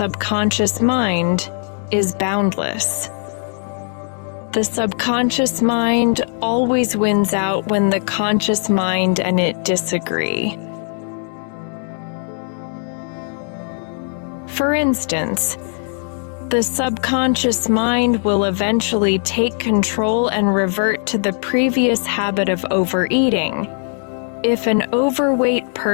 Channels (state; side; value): silent; right; 55 dB below the other